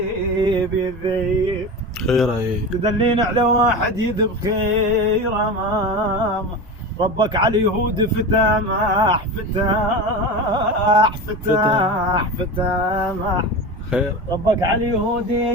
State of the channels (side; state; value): both; normal; correlation 0.26